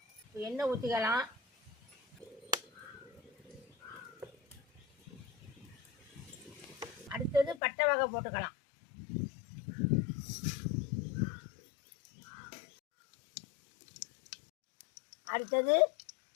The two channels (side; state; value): right; drops out; at 7.6 s